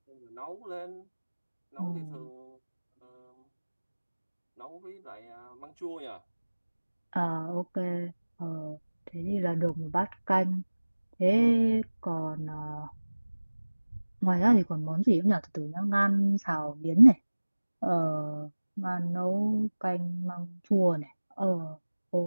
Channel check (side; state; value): both; inverted; correlation -1.00